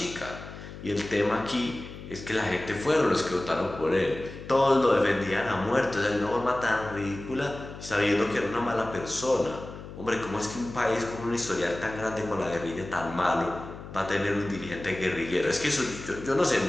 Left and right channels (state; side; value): noise; left; hum, 13 dB below the sound